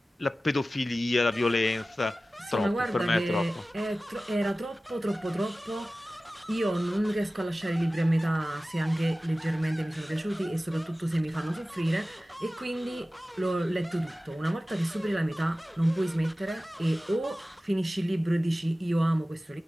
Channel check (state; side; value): normal; both; correlation 0.96